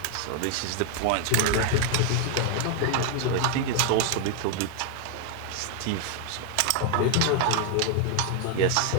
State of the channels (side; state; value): both; different; correlation 0.00